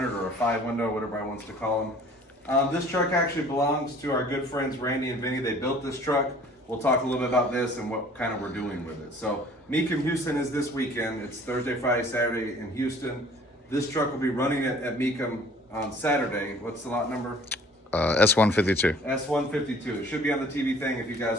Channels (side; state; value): both; normal; correlation 0.52